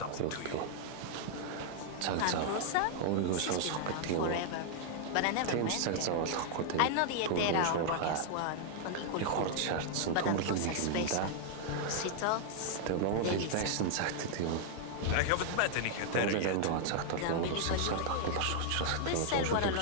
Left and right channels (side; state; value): both; different; correlation -0.01